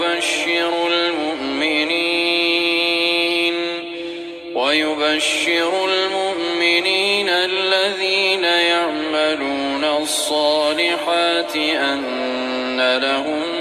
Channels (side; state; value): both; identical; correlation 1.00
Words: ويبشر المؤمنين الذين يعملون الصالحات أن